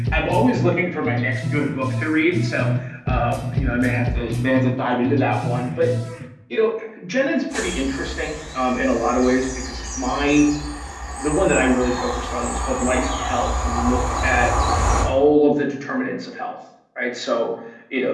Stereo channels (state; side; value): identical; both; correlation 1.00